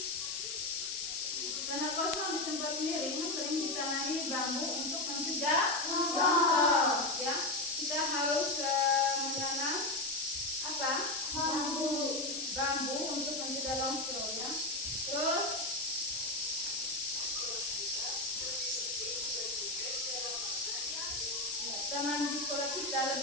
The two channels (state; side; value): noise; left; hiss, 5 dB below the sound